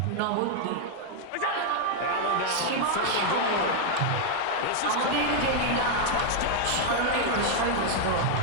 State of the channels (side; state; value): both; different; correlation 0.00